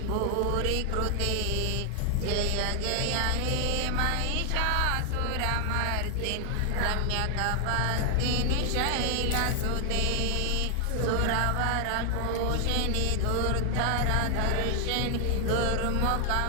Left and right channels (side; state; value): both; different; correlation 0.00